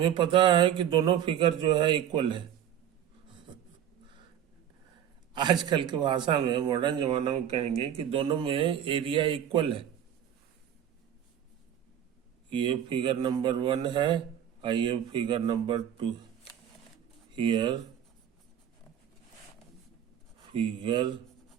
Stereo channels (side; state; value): left; quieter; 9.9 dB